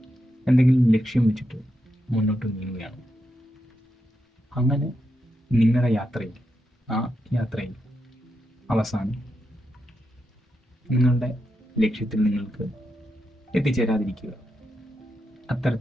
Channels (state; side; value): normal; both; correlation 0.85